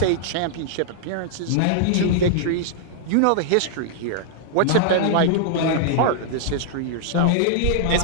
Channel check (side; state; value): both; different; correlation -0.01